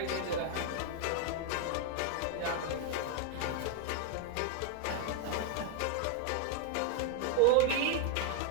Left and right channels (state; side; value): different; both; correlation 0.00